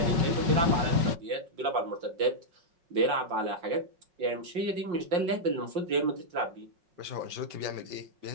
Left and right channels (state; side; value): late; left; 5.4 ms